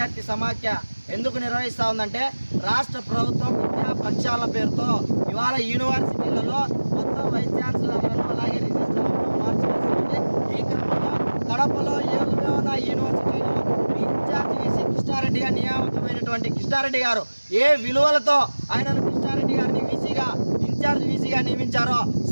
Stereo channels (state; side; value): inverted; both; correlation -1.00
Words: సమాఖ్య ఎందుకు నిర్వహిస్తా ఉందంటే రాష్ట్ర ప్రభుత్వం విద్యా ప్రక్షాళన పేరుతో ఇవాళ యూనివర్సిటీలలో మొత్తం వైస్ ఛాన్సలర్లను అలాగే రిజిస్ట్రార్లను మార్చివేస్తుంది. ఈ క్రమంలో కడపలో యోగవేమన యూనివర్సిటీలో విద్యార్థి వీసీ కృష్ణారెడ్డిగా నియామకమైనటువంటి కృష్ణారెడ్డి గారు ఏ విలువలతో ఆయనను కృష్ణారెడ్డి గారిని వీసీగా ఇన్ఛార్జ్ వీసీగా నియమించారో